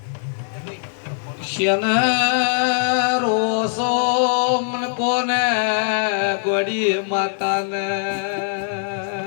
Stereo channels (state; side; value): silent; right; 61 dB below the other